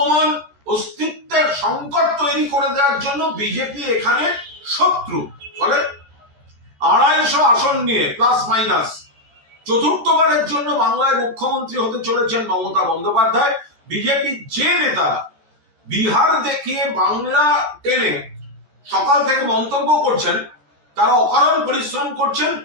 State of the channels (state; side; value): late; left; 13 ms